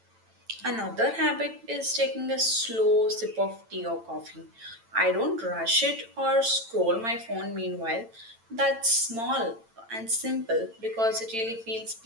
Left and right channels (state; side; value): late; left; 8.9 ms